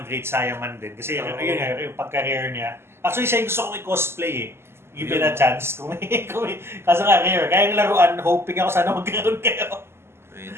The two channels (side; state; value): left; late; 0.12 ms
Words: Great Saiyaman din. Kasi yun nga, yung pagka-rare niya. Actually, siya yung gusto kong i-cosplay eh. Given a chance. Kaso nga, rare. Kaya yung laruan, hoping ako sana magkaroon kayo.